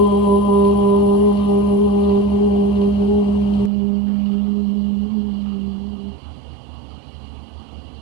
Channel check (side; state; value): left; drops out; at 3.7 s